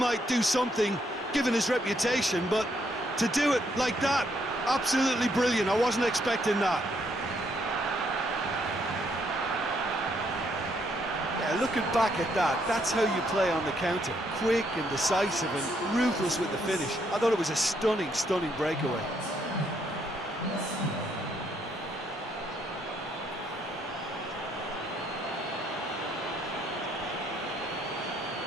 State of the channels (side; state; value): both; normal; correlation 0.72